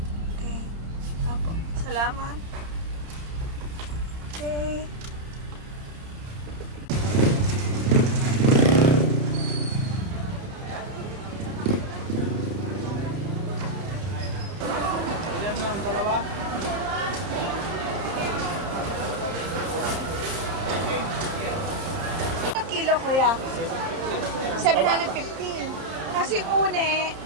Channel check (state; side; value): late; left; 30 ms